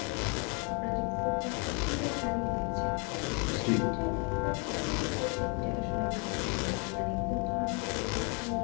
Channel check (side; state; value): right; quieter; 35.0 dB